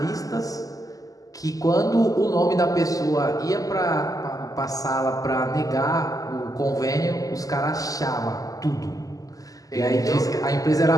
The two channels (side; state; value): right; late; 0.17 ms